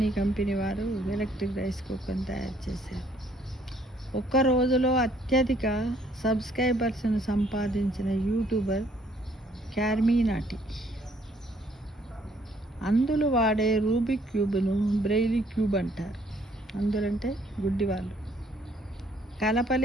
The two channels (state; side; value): normal; both; correlation 0.64